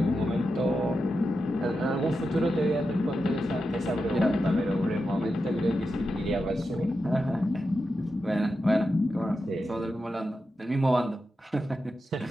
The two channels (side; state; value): both; normal; correlation 0.89